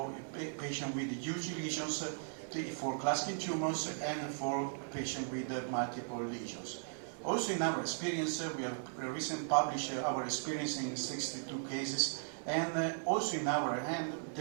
a patient with huge lesions for clustering tumors and for patient with multiple lesions. Also in our experience, we have recently published our experience in 62 cases, and also in our hand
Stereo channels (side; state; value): left; silent; 53 dB below the other